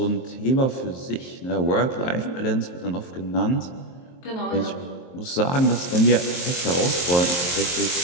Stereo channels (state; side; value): late; right; 23 ms